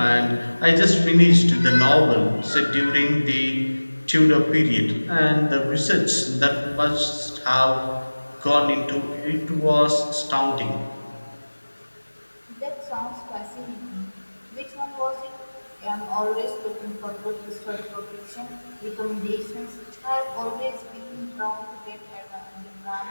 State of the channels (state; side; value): inverted; both; correlation -1.00